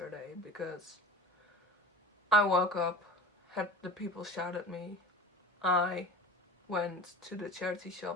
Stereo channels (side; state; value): both; normal; correlation 0.35